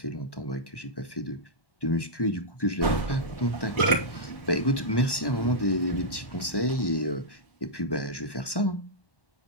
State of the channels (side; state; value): right; late; 1.1 ms